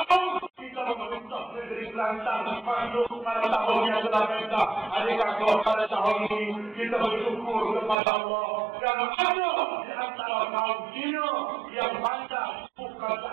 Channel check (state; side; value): drops out; left; at 8.0 s